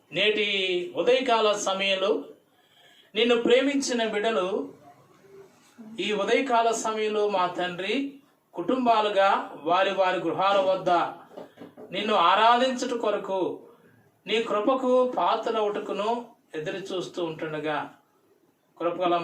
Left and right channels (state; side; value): identical; both; correlation 1.00